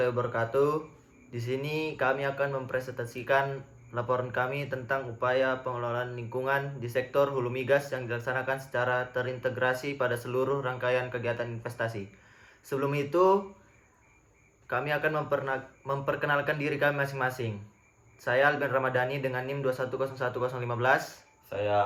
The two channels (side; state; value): both; identical; correlation 1.00